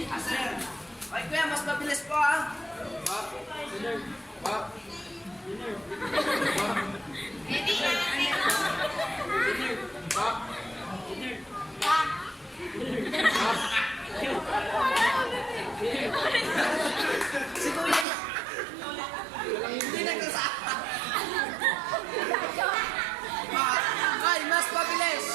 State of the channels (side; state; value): left; drops out; at 18.1 s